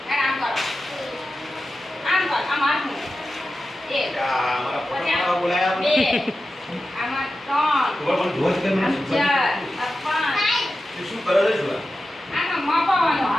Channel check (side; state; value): both; normal; correlation 0.92